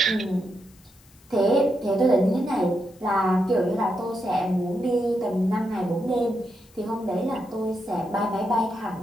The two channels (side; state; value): left; noise; hiss, 29 dB below the sound